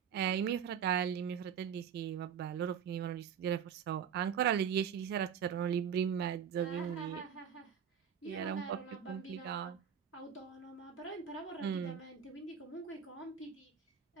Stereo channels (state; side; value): quieter; left; 8.0 dB